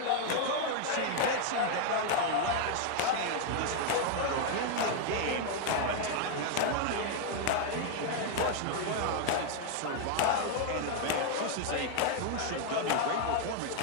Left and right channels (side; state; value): both; different; correlation 0.00